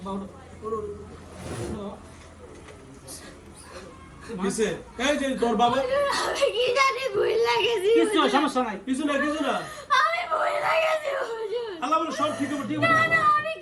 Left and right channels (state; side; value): identical; both; correlation 1.00